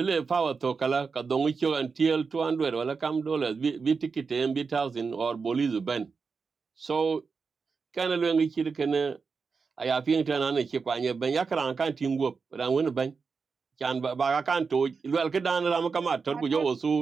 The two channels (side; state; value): left; quieter; 5.0 dB